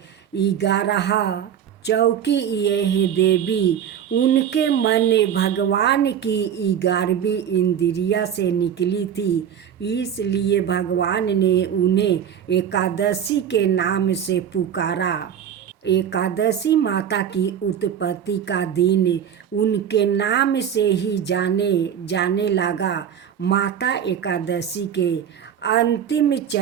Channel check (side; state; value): left; quieter; 8.9 dB